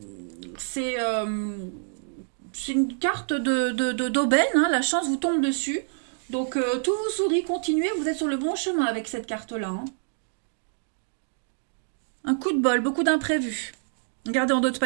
C'est une carte d'aubaine, hein, la chance vous tombe dessus. Donc tout vous sourit, continuez, vous êtes sur le bon chemin avec cette carte-là. Hein. Un coup de bol, beaucoup d'imprévus. Regardez en d'autres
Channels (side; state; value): left; silent; digital silence